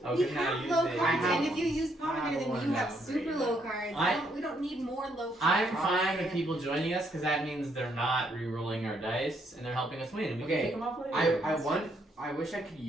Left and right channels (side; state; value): both; normal; correlation 0.72